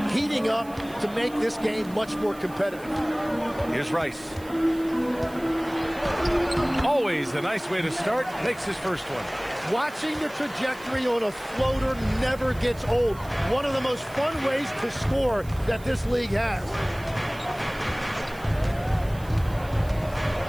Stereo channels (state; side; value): noise; right; hiss, 22 dB below the sound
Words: heating up to make this game much more competitive. Here's Rice. Always a nice way to start. Makes his first one. Watching the trajectory on a floater never gets old. One of the most fun ways to score that this league has.